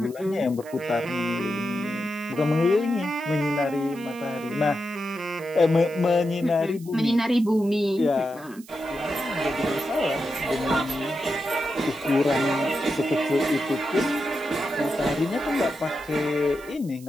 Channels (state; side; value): noise; right; hiss, 22 dB below the sound